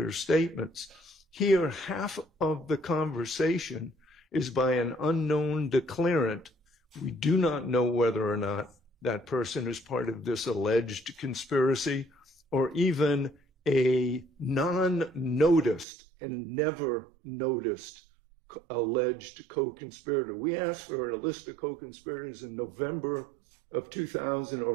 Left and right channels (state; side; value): drops out; left; at 15.9 s